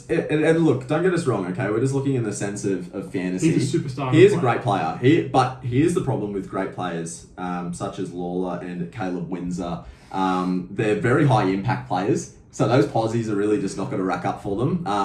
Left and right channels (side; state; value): both; identical; correlation 1.00